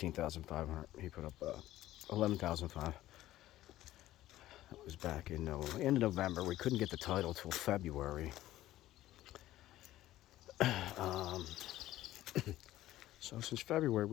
He put up 11,500. That was back in end of November. We couldn't get the title till February. So since February,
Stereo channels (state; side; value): quieter; right; 14.8 dB